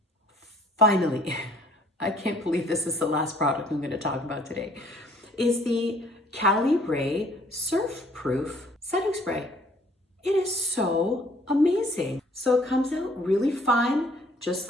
I can't believe this is the last product I'm going to talk about today, is the Cali Ray Surf Proof Setting Spray. It is so amazing. So it comes out really fine, just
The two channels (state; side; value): normal; both; correlation 0.59